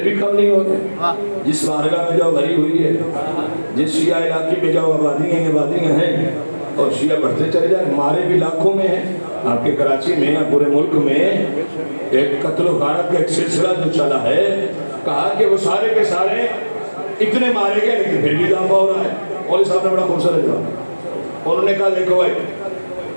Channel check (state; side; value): inverted; both; correlation -1.00